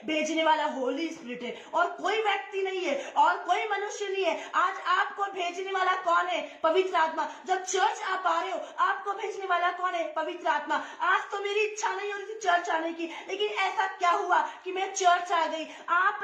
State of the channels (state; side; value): identical; both; correlation 1.00